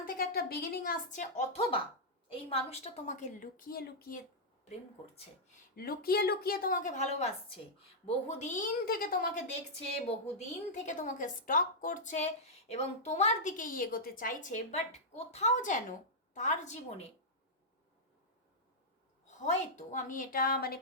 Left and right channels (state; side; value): normal; both; correlation -0.08